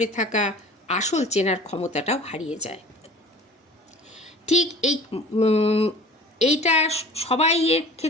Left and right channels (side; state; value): both; normal; correlation 0.43